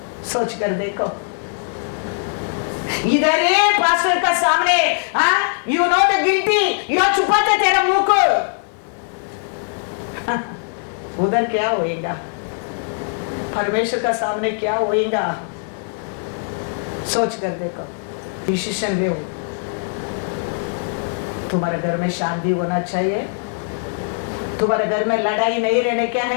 सोच कर देखो। इधर ये पास्टर का सामने, यू नो द गिल्टी, यो छुपाते तेरा मुंह को, उधर क्या होएगा? परमेश्वर का सामने क्या होएगा? सोच कर देखो, डिसीजन ले। तुम्हारे घर में शांति होना चाहिए। तुम्हारे घर में लड़ाई नहीं रहने क्या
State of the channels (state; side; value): silent; right; 65 dB below the other